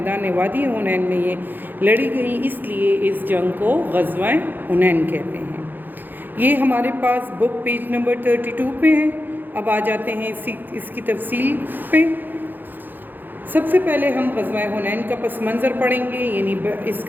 وادی حنین میں یہ لڑی گئی، اس لیے اس جنگ کو غزوہ حنین کہتے ہیں۔ یہ ہمارے پاس بک پیج نمبر 32 پہ ہے۔ اب آ جاتے ہیں اس کی تفصیل پہ۔ سب سے پہلے ہم غزوہ حنین کا پس منظر پڑھیں گے، یعنی اس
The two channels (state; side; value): late; left; 0.089 ms